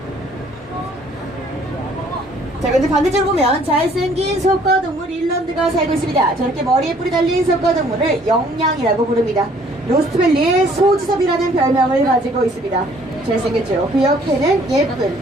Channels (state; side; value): normal; both; correlation 0.59